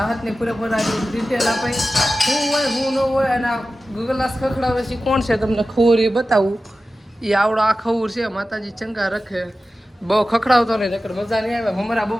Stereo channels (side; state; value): both; normal; correlation 0.94